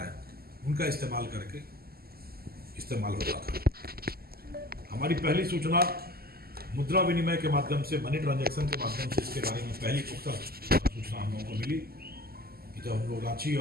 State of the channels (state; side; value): late; left; 0.45 ms